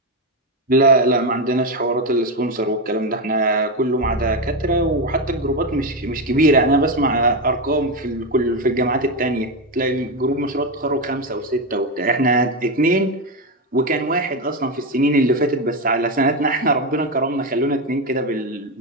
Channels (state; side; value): normal; both; correlation 0.11